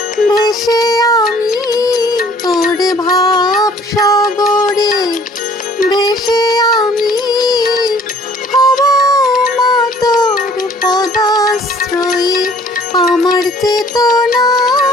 ভেসে আমি, তোর ভাব সাগরে ভেসে আমি হব মা তোর পদাশ্রয়ী। আমার চেতনা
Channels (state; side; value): normal; both; correlation 0.56